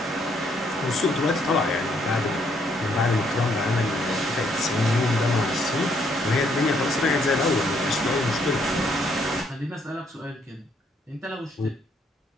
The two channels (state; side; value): normal; both; correlation 0.70